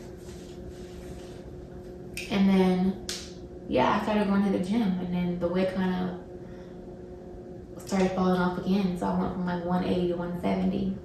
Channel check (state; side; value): identical; both; correlation 1.00